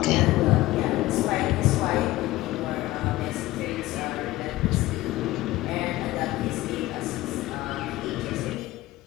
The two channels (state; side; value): quieter; right; 17.3 dB